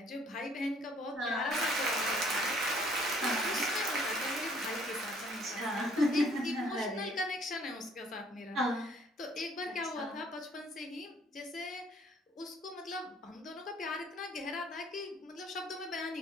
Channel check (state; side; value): normal; both; correlation 0.61